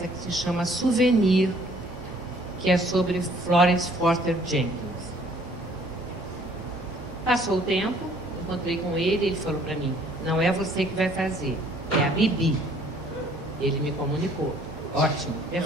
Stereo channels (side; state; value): both; normal; correlation 0.59